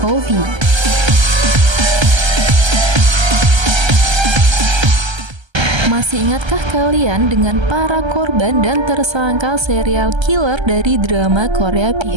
Masih ingatkah kalian dengan para korban dan tersangka serial killer dari drama Korea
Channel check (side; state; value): left; late; 1.3 ms